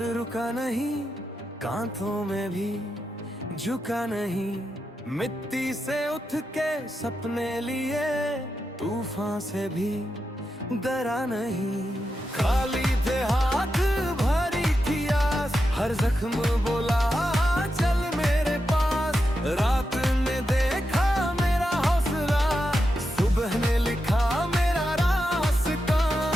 रुका नहीं, कांथों में भी झुका नहीं। मिट्टी से उठ के सपने लिए, तूफान से भी डरा नहीं। खाली थे हाथ भरी थी आस, हर जख्म बोला चल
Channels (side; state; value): both; normal; correlation 0.88